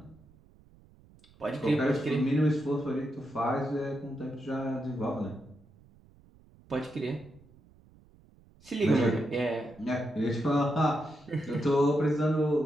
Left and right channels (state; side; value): noise; right; rumble, 27 dB below the sound